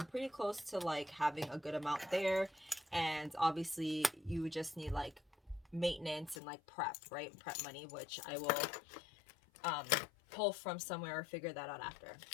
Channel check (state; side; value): drops out; right; at 6.4 s